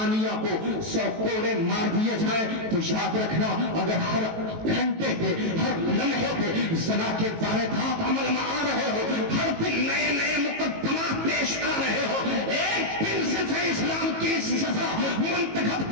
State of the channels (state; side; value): late; left; 18 ms